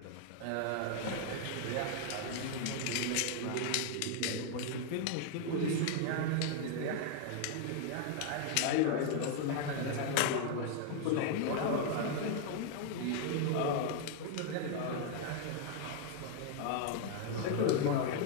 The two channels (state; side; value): different; both; correlation 0.00